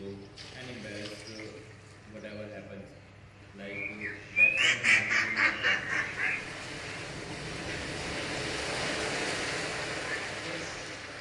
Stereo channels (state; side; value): identical; both; correlation 1.00